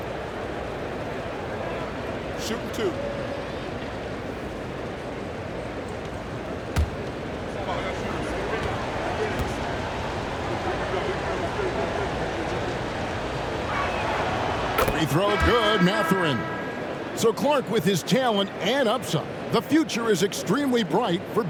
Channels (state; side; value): identical; both; correlation 1.00